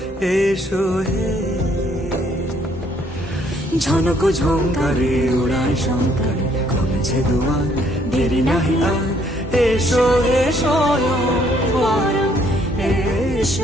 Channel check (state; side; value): normal; both; correlation 0.66